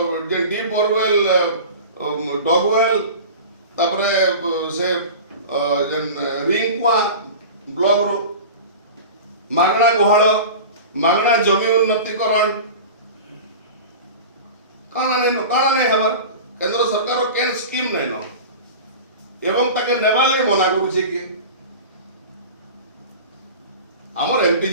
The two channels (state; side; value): inverted; both; correlation -0.34